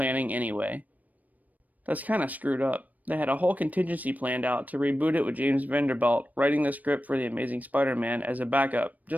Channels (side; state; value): left; late; 0.077 ms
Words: anyway. That's kinda screwed up. They had a whole contingency planned out to reboot it with James Vanderbilt writing the script for The Amazing Spider-Man as a backup,